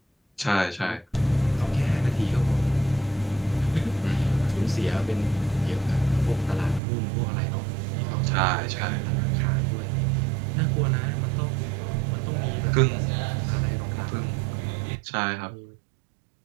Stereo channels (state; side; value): drops out; left; at 6.8 s